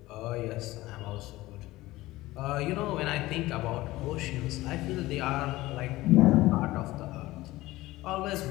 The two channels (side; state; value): right; quieter; 18.1 dB